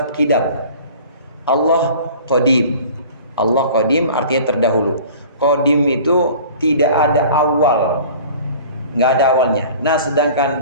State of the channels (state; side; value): inverted; both; correlation -0.44